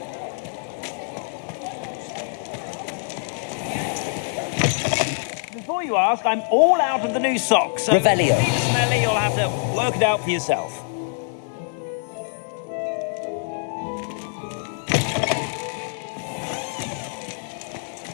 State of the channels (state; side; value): silent; right; 62 dB below the other